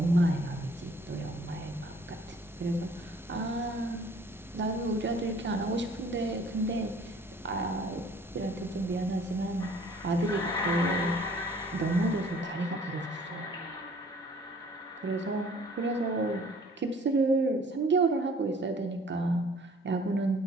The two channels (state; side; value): normal; both; correlation 0.54